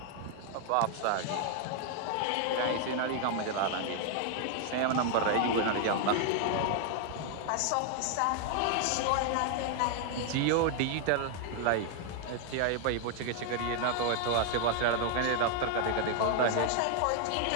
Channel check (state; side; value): different; both; correlation 0.00